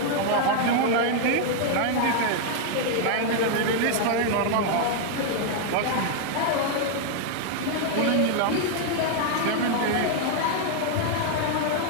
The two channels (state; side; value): different; both; correlation 0.00